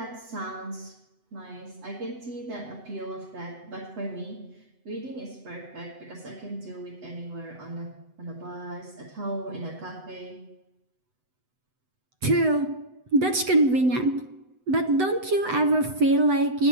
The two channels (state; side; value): late; left; 7.9 ms